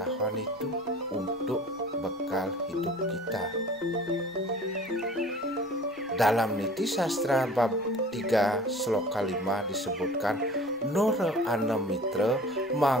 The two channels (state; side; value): normal; both; correlation 0.45